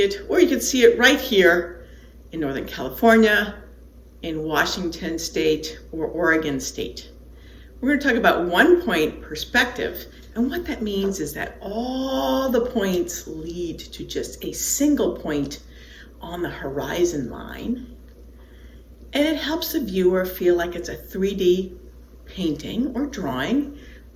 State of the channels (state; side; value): identical; both; correlation 1.00